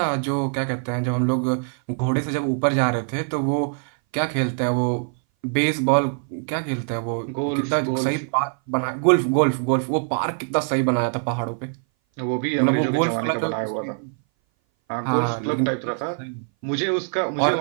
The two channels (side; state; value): left; silent; 59 dB below the other